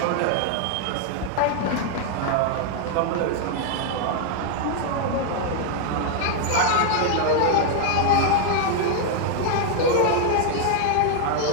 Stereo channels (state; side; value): different; both; correlation 0.00